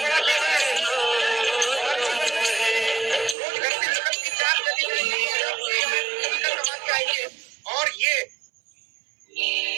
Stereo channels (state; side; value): drops out; left; at 3.4 s